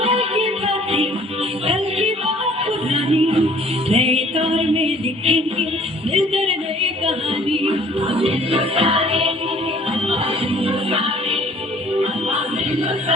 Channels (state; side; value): normal; both; correlation 0.55